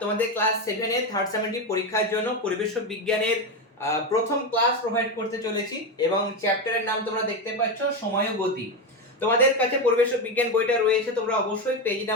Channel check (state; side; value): normal; both; correlation 0.13